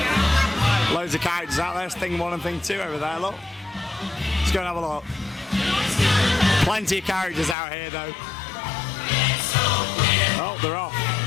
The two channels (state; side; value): drops out; right; at 7.6 s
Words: Loads of characters out there, Thing 1 and Thing 2 over there, look. Let's go and have a look. Plenty of characters out here though. Oh, they're off.